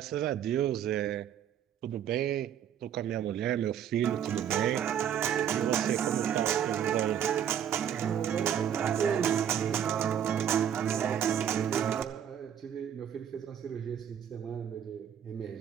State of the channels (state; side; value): quieter; left; 9.3 dB